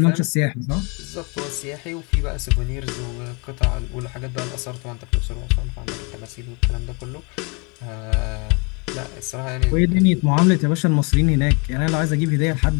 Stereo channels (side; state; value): right; quieter; 31.8 dB